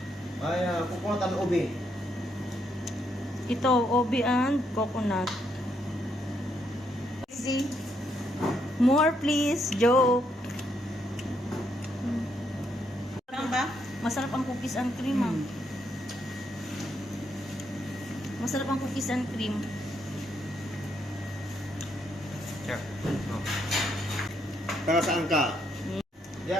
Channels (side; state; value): both; normal; correlation 0.76